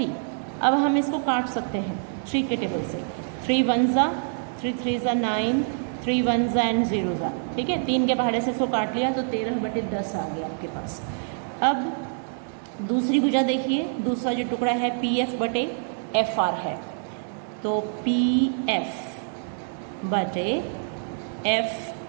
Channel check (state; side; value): silent; left; digital silence